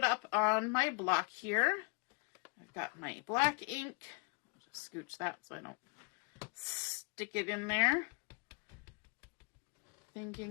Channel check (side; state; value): right; quieter; 32.9 dB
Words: up on my block here. I've got my black ink. I'll just scooch that so I don't stick it in there.